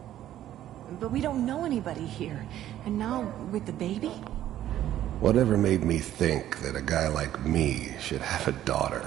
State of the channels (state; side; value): quieter; left; 12.4 dB